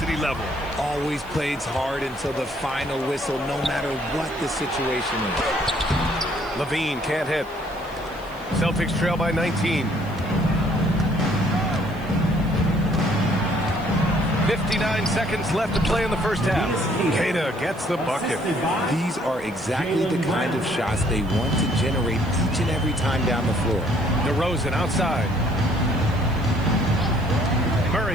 level. Always plays hard until the final whistle, no matter what the situation is. LaVine can't hit. Celtics trail by 19. 59 seconds left to play in the first half. Queta gets the bucket. These are exactly the kind of shots they want to generate each and every time down the floor. DeRozan outside.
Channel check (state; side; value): noise; right; hiss, 25 dB below the sound